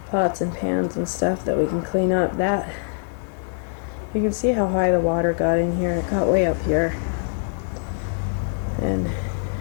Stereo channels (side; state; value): right; silent; digital silence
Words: pots and pans and stuff that we can clean up. That, you can see how high the water got in here. It got way up here. And